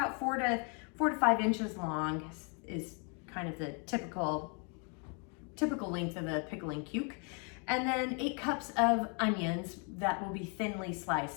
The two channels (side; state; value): right; quieter; 36.7 dB